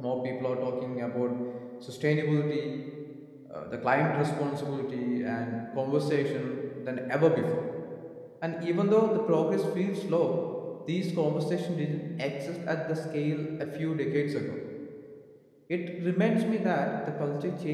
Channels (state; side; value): identical; both; correlation 1.00